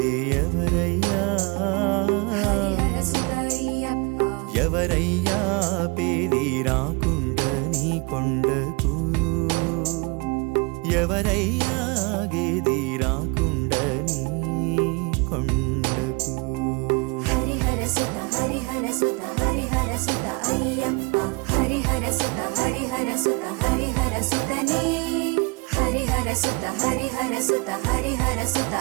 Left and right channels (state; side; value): quieter; left; 29.3 dB